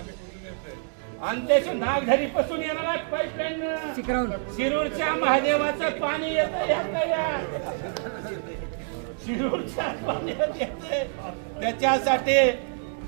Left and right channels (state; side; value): silent; left; 60 dB below the other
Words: आणि त्याची नागझरी पासून येणारा पाईपलाईन शिरूरच्या महादेवाचं पाणी येतं शिरूरच्या पाण्यात येते. त्याच्यासाठी